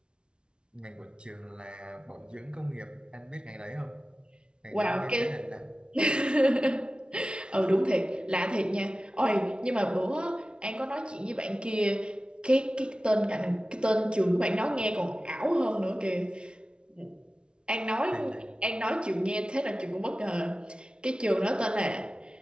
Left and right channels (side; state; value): left; late; 0.056 ms